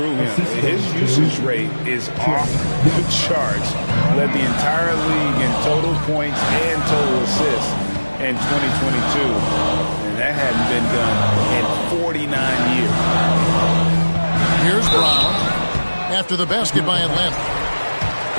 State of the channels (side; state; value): both; inverted; correlation -1.00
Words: him. His usage rate is off the charts. Led the entire league in total points and total assists in 2022. And that hadn't been done in 49 years. Here's Brown after the basket by Atlanta.